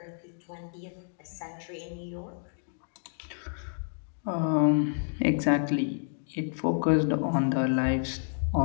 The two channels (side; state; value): right; silent; digital silence